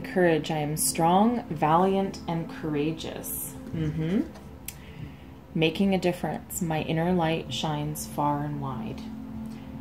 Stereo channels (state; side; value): identical; both; correlation 1.00